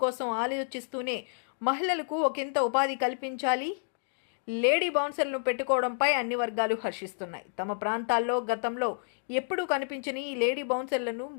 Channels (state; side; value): silent; right; digital silence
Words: కోసం ఆలోచిస్తూనే మహిళలకు ఒకంత ఉపాధి కల్పించాలి, లేడీ బౌన్సర్లను పెట్టుకోవడంపై అన్ని వర్గాలు హర్షిస్తున్నాయి. తమ ప్రాంతాల్లో గతంలో ఎప్పుడూ కనిపించని ఈ లేడీ బౌన్సర్లను